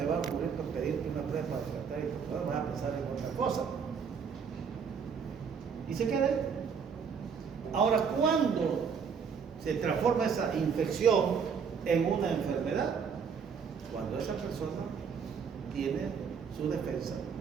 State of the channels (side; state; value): left; quieter; 6.4 dB